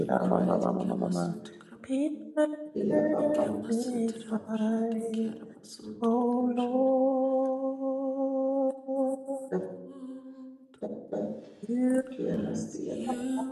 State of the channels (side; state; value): both; identical; correlation 1.00